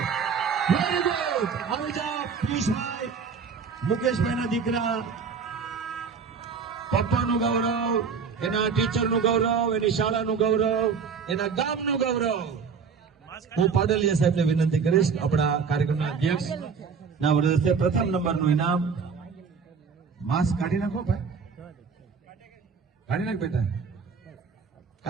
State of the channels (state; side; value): quieter; left; 5.8 dB